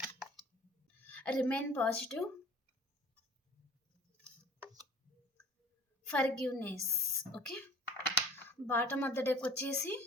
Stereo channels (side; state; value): both; normal; correlation 0.47